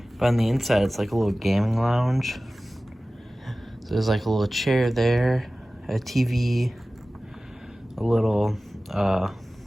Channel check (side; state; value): both; normal; correlation 0.97